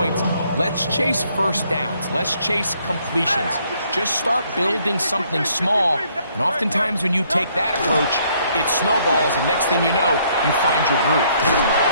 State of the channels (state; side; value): inverted; both; correlation -0.67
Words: Let's chase first downs. Let's chase completions. Just start building something small. And oftentimes when you take that approach, it snowballs, and next thing you know, you find your groove.